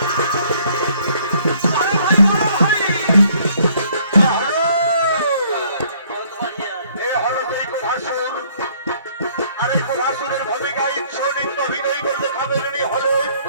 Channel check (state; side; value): inverted; both; correlation -0.62